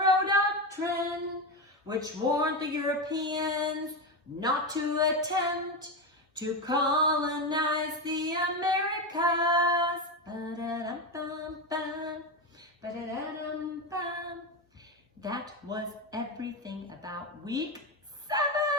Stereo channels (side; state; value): both; normal; correlation 0.14